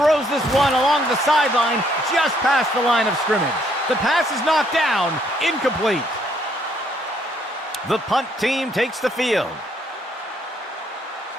this one along the sideline, just past the line of scrimmage. The pass is knocked down, incomplete. The punt team takes the field.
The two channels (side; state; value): both; normal; correlation 0.68